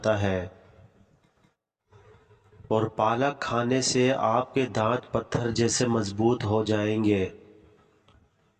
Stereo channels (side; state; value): both; identical; correlation 1.00